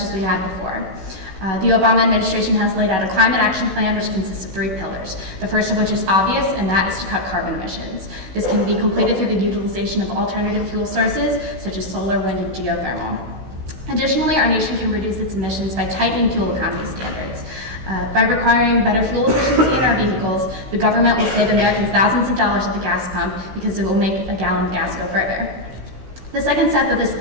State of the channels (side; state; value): left; late; 16 ms